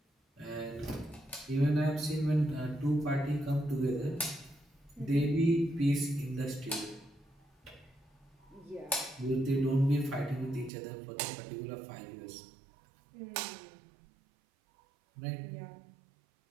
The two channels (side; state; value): left; drops out; at 10.7 s